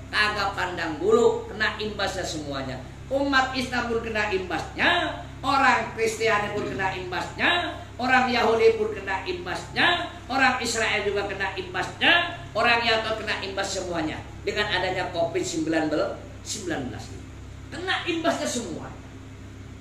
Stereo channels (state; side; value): identical; both; correlation 1.00